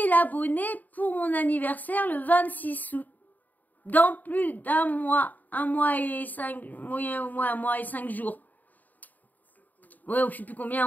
abonnés pour mon anniversaire le 26 août. dans plus d'un mois, un mois et 5 Ouais, je sais plus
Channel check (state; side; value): late; right; 0.082 ms